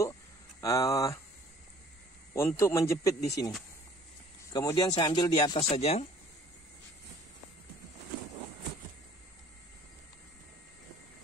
menjepit di sini. Kemudian saya ambil di atas saja.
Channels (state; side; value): normal; both; correlation 0.54